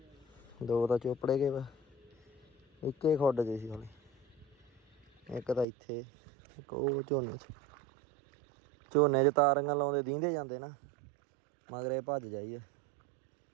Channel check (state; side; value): drops out; left; at 5.7 s